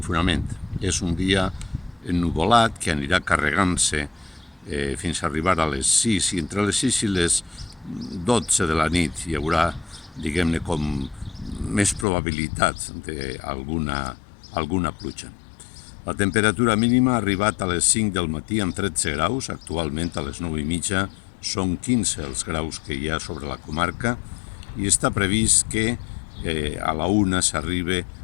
És un dia ennuvolat que anirà carregant-se fins a arribar a les 6 i entre les 6 i les 12 de la nit hi haurà, diguem-ne, com més probabilitat d'alguna pluja. La temperatura mínima ha arribat a les 5 del matí amb 13 graus, actualment a les 9 i mitja són 15 els graus que hi ha sobre la comarca i està previst que a la 1 s'arribi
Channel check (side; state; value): right; drops out; at 12.1 s